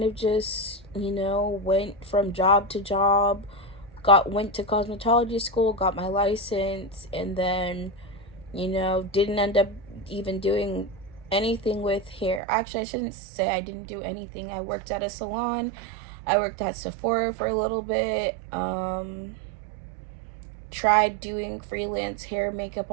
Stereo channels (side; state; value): left; drops out; at 12.4 s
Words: of just, went from job to job, went to cosmetology school, got my license, and then, didn't end up even doing anything with hair. Actually, I shouldn't say I didn't do anything. I worked at a salon. I worked at Sephora for a little bit. Tried doing freelance hair makeup